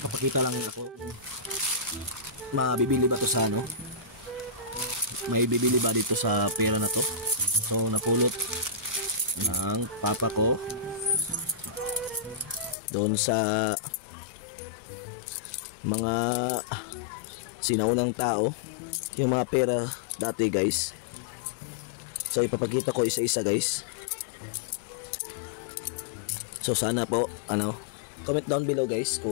lang ako. Mabibili ba to sa ano? May bibili ba dito sa pera na to? So napulot ng papa ko doon sa mga sinaunang tao, yung mga pera dati guys. So ipapakita ko isa-isa guys. So sana po comment down below guys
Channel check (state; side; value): drops out; right; at 12.8 s